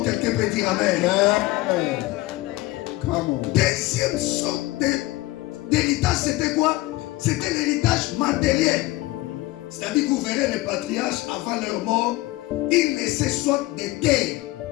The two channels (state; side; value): quieter; right; 19.1 dB